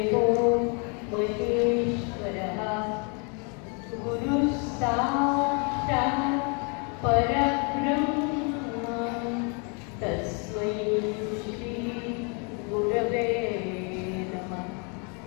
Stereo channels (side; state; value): right; quieter; 35.7 dB